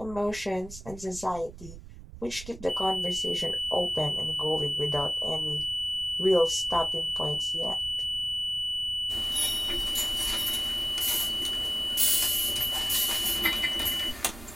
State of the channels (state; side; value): noise; right; rumble, 15 dB below the sound